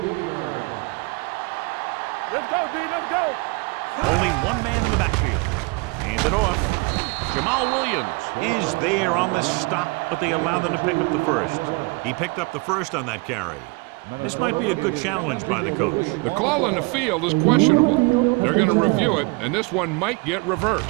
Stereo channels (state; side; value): quieter; left; 28.0 dB